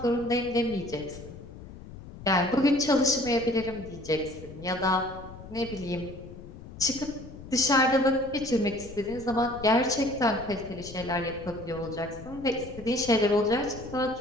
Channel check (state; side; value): noise; left; rumble, 15 dB below the sound